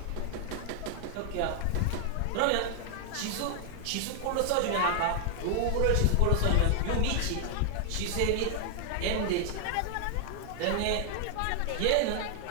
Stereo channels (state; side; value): different; both; correlation 0.00